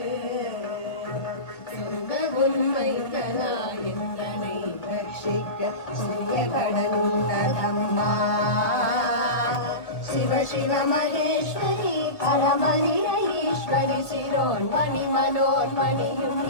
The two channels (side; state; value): right; late; 1.9 ms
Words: சொந்த உண்மை தனா என்றனை ரட்சிக்க சிறிய கடனுள்ளதம்மா शिव शिव महेश्वरी परमनिरयेश्वरी शिरोन्मणि